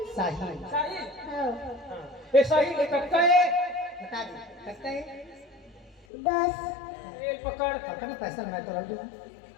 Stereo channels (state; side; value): drops out; right; at 6.1 s